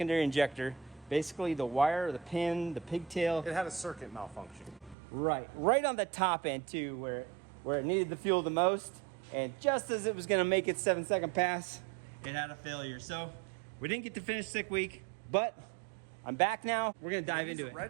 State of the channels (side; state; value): left; drops out; at 5.0 s